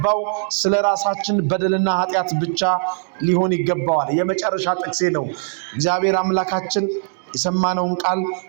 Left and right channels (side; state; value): left; silent; digital silence